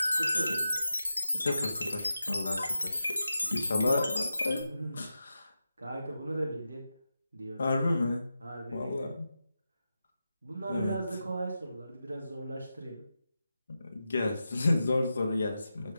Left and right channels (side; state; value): both; inverted; correlation -0.90